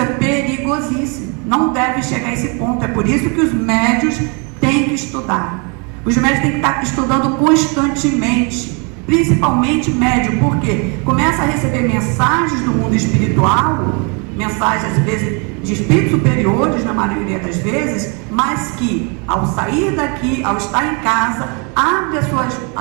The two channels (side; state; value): left; quieter; 34.1 dB